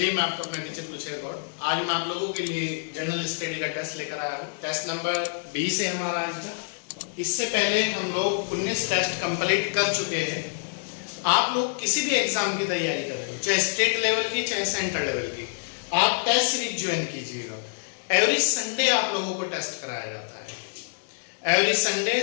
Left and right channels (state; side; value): silent; right; digital silence